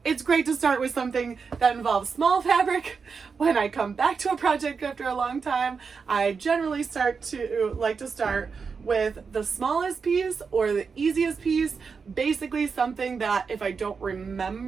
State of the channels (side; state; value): left; quieter; 5.4 dB